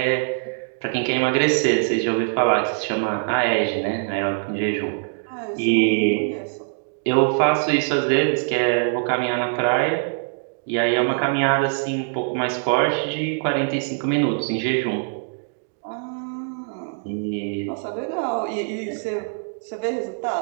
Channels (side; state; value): left; silent; 63 dB below the other